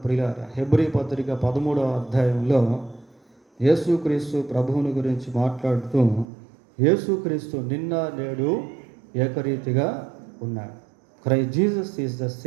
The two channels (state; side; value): drops out; left; at 6.2 s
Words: ప్రియులారా. హెబ్రీ పత్రిక 13వ అధ్యాయంలో యేసుక్రీస్తు ప్రభువుని గురించి మాట్లాడుతూ, యేసుక్రీస్తు నిన్న నేడు ఏకరీతిగా ఉన్నాడు. Christ Jesus is the